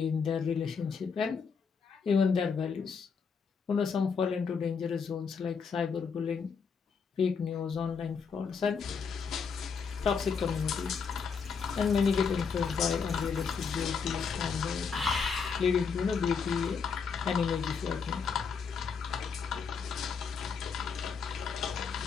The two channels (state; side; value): quieter; right; 5.8 dB